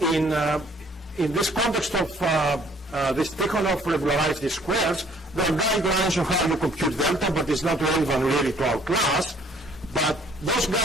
this context of this Tikhonov regularized least squares, there are guidelines on how you compute delta, but it's not relevant really to our class. But those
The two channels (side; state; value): both; normal; correlation 0.60